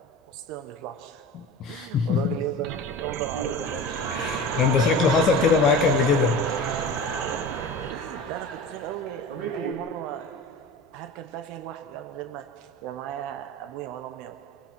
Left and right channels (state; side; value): normal; both; correlation 0.34